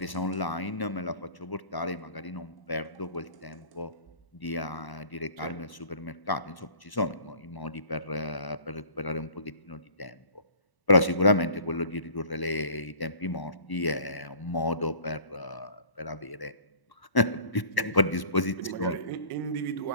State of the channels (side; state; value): right; late; 1.0 ms